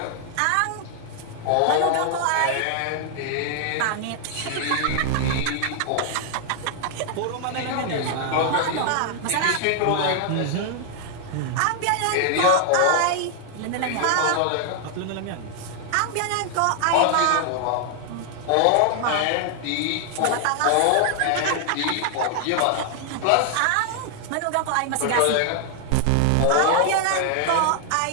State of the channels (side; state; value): both; different; correlation 0.00